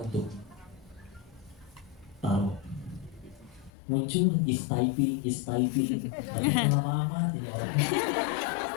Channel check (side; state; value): right; drops out; at 3.7 s